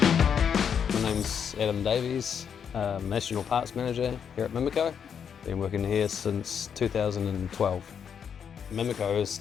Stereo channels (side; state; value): right; quieter; 7.5 dB